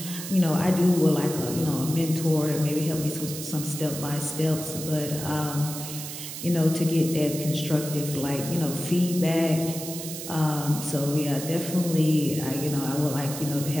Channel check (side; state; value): right; noise; hiss, 8 dB below the sound